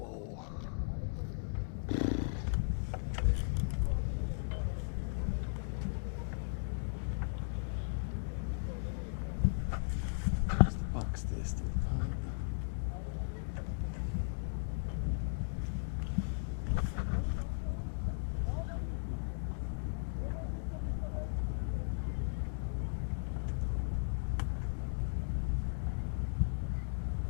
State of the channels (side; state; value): right; silent; digital silence